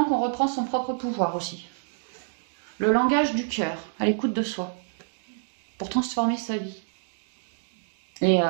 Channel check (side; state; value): left; silent; digital silence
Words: qu'on reprend son propre pouvoir aussi. Le langage du cœur, à l'écoute de soi, pour transformer sa vie. Et